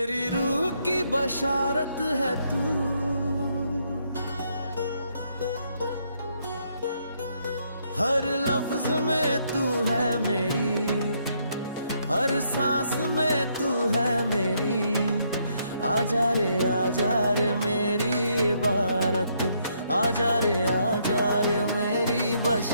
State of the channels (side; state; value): both; inverted; correlation -0.73